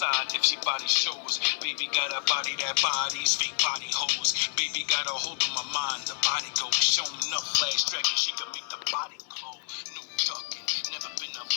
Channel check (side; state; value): right; silent; 59 dB below the other